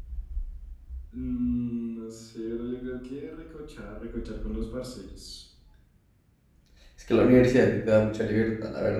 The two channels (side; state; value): both; identical; correlation 1.00